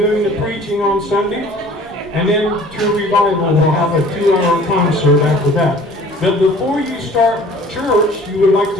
the preaching on Sunday. And then True Revival will have a 2-hour concert after that. But before you start church, you would like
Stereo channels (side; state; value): both; normal; correlation 0.49